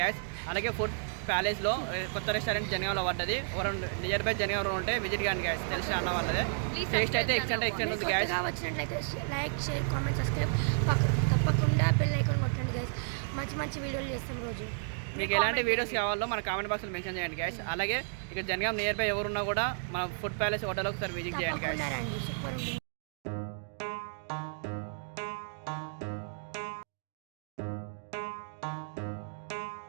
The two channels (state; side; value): silent; left; digital silence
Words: అలాగే ఫుడ్ ప్యాలెస్లో కొత్త రెస్టారెంట్ జనగాంలో పడ్డది. ఎవరు నియర్ బై జనగాంలో ఉంటే విజిట్ కానీ గ్యాస్, తెలిసిన అన్న వాళ్ళదే. టేస్ట్ అయితే ఎక్స్టెంట్ ఉంది గ్యాస్. వచ్చినట్లయితే లైక్, షేర్, కామెంట్, సబ్స్క్రైబ్ తప్పకుండా బెల్ ఐకాన్ కొట్టండి గ్యాస్. మంచి మంచి వీడియోలు చేస్తాం రోజు. మీకు ఎలాంటి వీడియోస్ కావాలో మన కామెంట్ బాక్స్లో మెన్షన్ చేయండి గ్యాస్. అలాగే ఇక్కడ జనగాం నియర్ బై ఎవరున్నా కూడా మన ఫుడ్ ప్యాలెస్ హోటల్ ఒకసారి విజిట్ చేయండి గ్యాస్. సూపర్ ఉంటుంది.